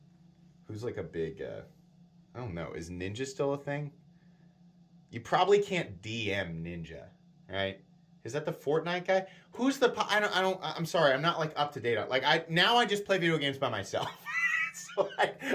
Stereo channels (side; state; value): both; identical; correlation 1.00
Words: Who's a big, I don't know, is Ninja still a thing? You probably can't DM Ninja, right? Is that the Fortnite guy? Who's the? I'm sorry, I'm not up to date on. I just play video games by myself, so